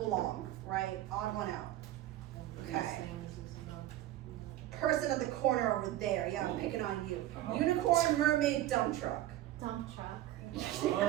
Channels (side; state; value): left; quieter; 14.2 dB